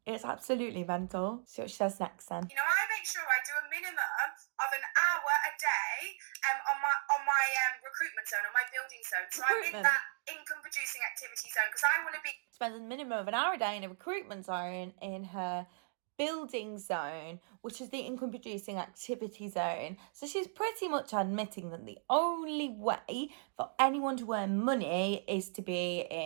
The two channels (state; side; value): silent; left; digital silence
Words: It's absolutely mental. See what she says next then. You know, I make sure I do a minimum of an hour a day on my recruitment zone, on my building zone. So I'm in that income producing activity zone because I want to be... Spends a minimum of an hour a day in a recruitment zone in her building zone, which is the income producing activity zone. So she's pretty much admitting that the only way for anyone to earn money is to be